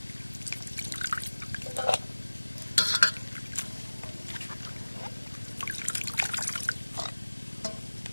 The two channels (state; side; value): inverted; both; correlation -1.00